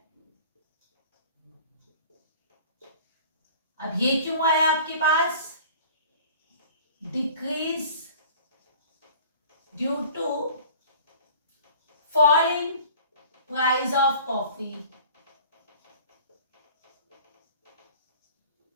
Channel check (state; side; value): inverted; both; correlation -0.46